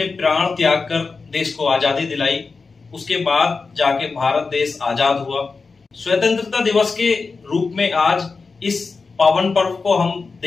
प्राण त्याग कर देश को आजादी दिलाई। उसके बाद जाके भारत देश आजाद हुआ। स्वतंत्रता दिवस के रूप में आज इस पावन पर्व को हम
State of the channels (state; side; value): quieter; right; 4.4 dB